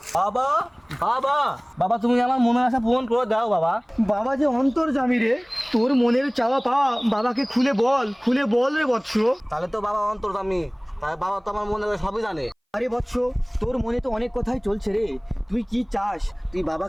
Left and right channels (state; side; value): identical; both; correlation 1.00